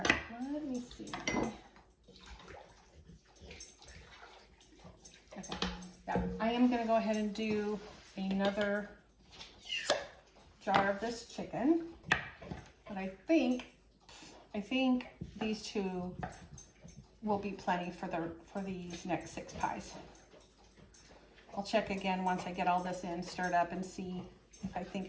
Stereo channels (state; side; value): identical; both; correlation 1.00